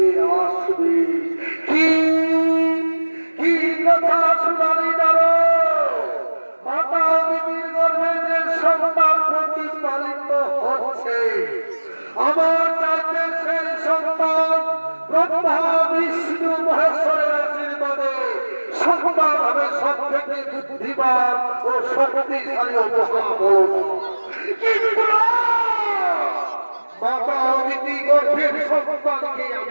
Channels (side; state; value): both; inverted; correlation -1.00